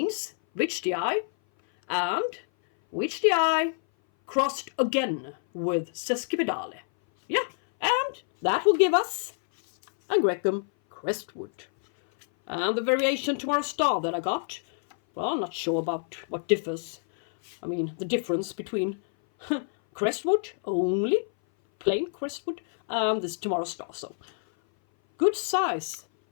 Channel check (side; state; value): right; silent; 57 dB below the other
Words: Whichdii, and Whichdii crossed again with sesquipedale. Yeah, and that will give us Angraecum Crestwood. And the variation Tomorrow Star that I got, well, I'm not sure about what differs. I mean, the difference between Crestwood, only plain Crestwood, and this Tomorrow Star. So, good size,